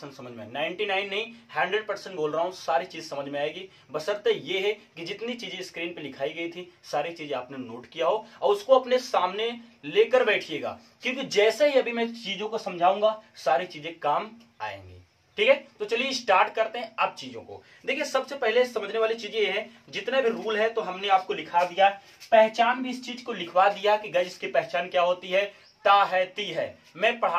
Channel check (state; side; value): identical; both; correlation 1.00